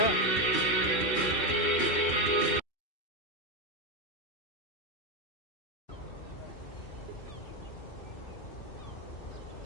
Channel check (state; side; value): late; right; 2.6 ms